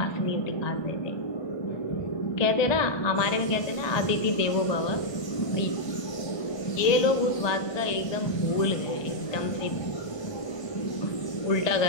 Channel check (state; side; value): late; right; 1.2 ms